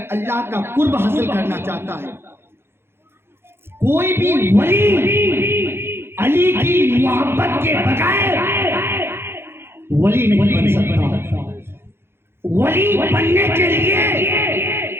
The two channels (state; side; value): late; left; 0.11 ms